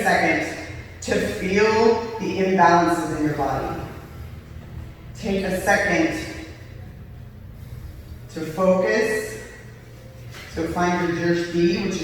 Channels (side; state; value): both; identical; correlation 1.00